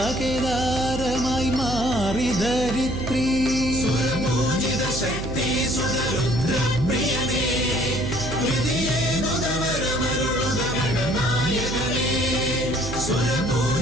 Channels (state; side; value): noise; right; hum, 6 dB below the sound